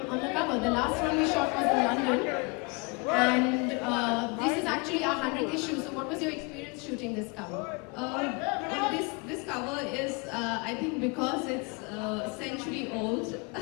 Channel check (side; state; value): right; quieter; 30.0 dB